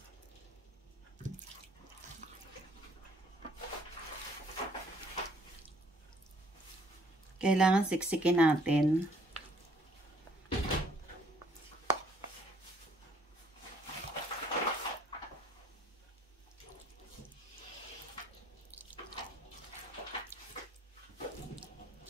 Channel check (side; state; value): both; normal; correlation 0.62